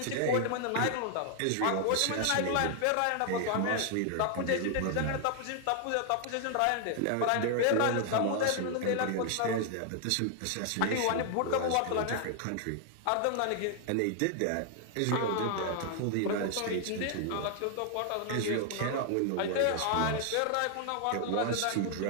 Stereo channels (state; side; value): different; both; correlation 0.00